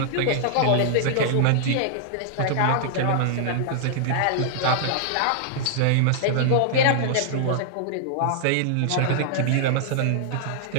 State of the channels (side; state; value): both; different; correlation -0.01